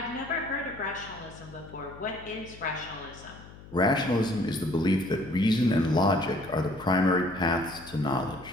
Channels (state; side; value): noise; left; hum, 18 dB below the sound